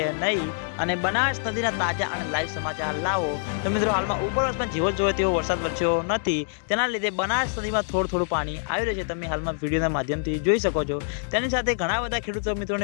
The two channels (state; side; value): silent; right; digital silence